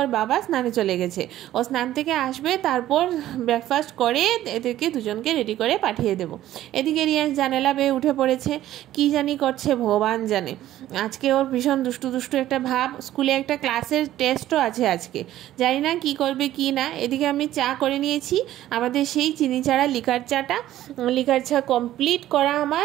বাবা স্নানে চলে গেছে। ও স্নান থেকে আসবে, তারপর ব্রেকফাস্ট করে এদেরকে দুজনকে রেডি করে পাঠিয়ে দেবো। এদিকে রিয়াংশ জানালা বেয়ে উঠে পড়েছে, কি জানি করছে ভগবান জানে। আজকে ওর ভীষণ দুষ্টু দুষ্টু একটা ভাব, স্কুলে একটা ক্লাসের টেস্টও আছে আজকে, জানি না কি করবে কি না। এদিকে আমি চা করে নিয়েছি, আমাদের সেই চিনি ছাড়া লিকার চাটা, লিকার চা কমপ্লিট করা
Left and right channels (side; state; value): left; quieter; 13.5 dB